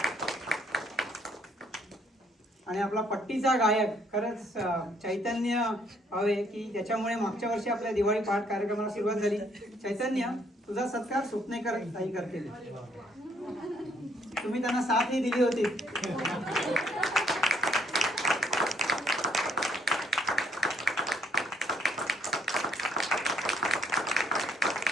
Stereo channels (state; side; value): normal; both; correlation 0.67